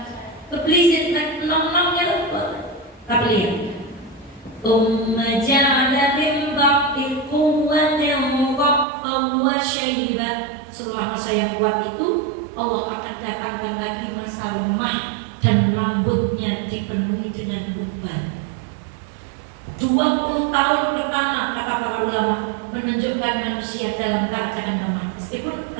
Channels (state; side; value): drops out; left; at 8.8 s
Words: keblisin nong-nongnya lupa. Tapi lihat. Ja'ala min ba'di quwwatin dha'fan wa shayba. Setelah masa yang kuat itu, Allah akan datangkan lagi masa lemah dan rambutnya dipenuhi dengan uban. 20 tahun pertama kata para ulama menunjukkan manusia dalam keadaan lemah. Meskipun